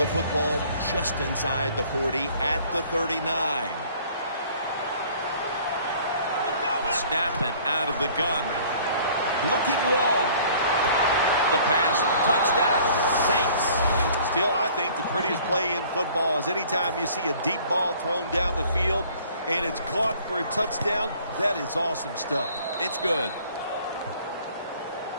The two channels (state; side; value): inverted; both; correlation -0.54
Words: football just inside the 40 at the 39. Snapping out of the gun. Looking long. The pass, touchdown, Saints. Still, I think the prettiest play in football is anytime you see a deep ball thrown down the field and it's caught for a touchdown. That is awesome stuff. It's good.